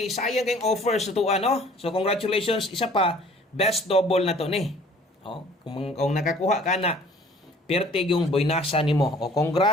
sayang kayong offer sa tuwa, no. So congratulations, isa pa best double na to ni. Kung nakakuha ka na, pertig yung boynasa nimo. O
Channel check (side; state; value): both; normal; correlation 0.53